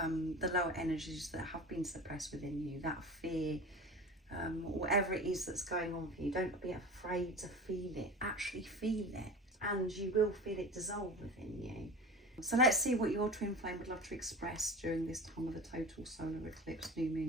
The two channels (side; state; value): both; normal; correlation 0.34